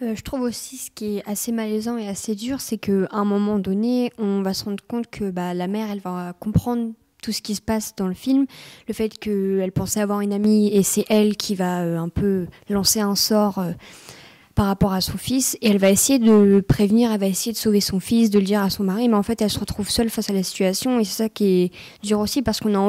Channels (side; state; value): both; identical; correlation 1.00